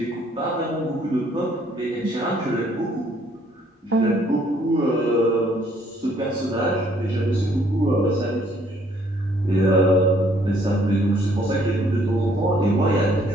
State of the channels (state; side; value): normal; both; correlation 0.64